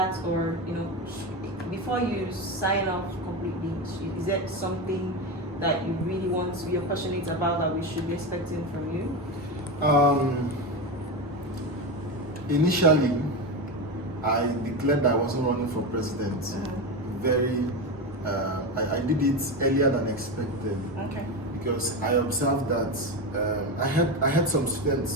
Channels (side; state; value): both; normal; correlation 0.18